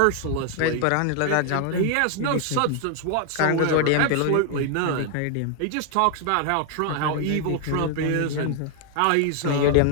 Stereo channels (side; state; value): both; different; correlation 0.00